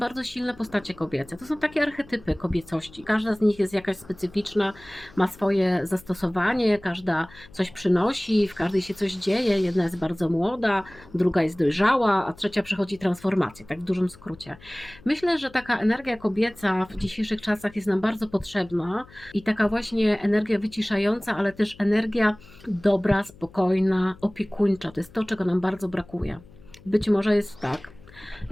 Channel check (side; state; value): left; noise; hum, 23 dB below the sound